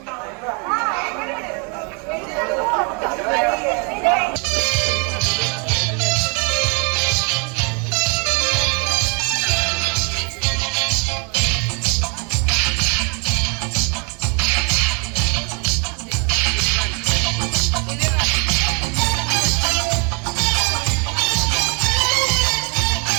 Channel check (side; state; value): left; quieter; 35.3 dB